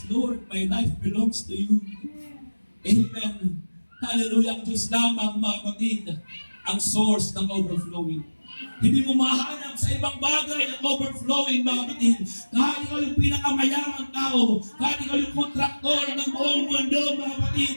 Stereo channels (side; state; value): both; inverted; correlation -1.00